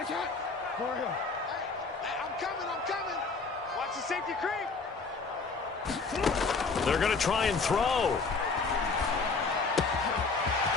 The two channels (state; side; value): quieter; right; 4.3 dB